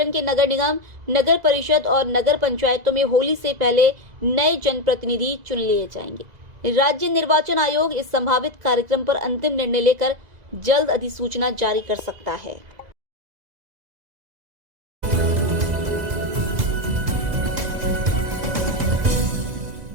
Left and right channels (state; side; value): late; left; 2.0 ms